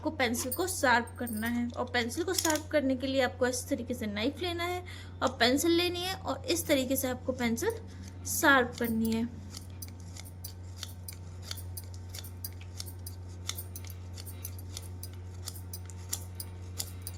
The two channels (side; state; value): both; identical; correlation 1.00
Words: पेंसिल को शार्प करना है, और पेंसिल को शार्प करने के लिए आपको इस तरीके से नाइफ लेना है और पेंसिल लेनी है, और इस तरीके से आपको पेंसिल शार्प करनी है।